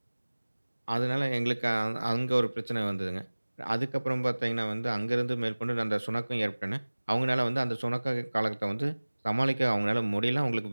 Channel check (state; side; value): inverted; both; correlation -1.00